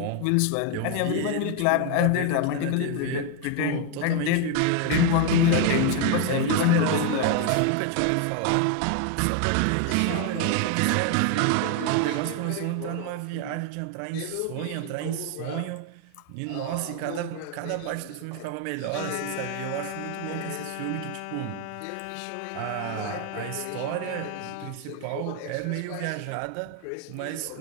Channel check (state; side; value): different; both; correlation 0.01